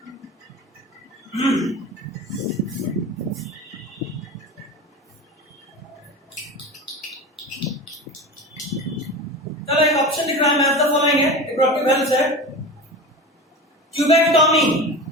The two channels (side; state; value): both; normal; correlation 0.29